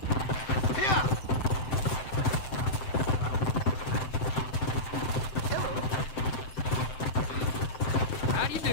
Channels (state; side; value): late; right; 7.8 ms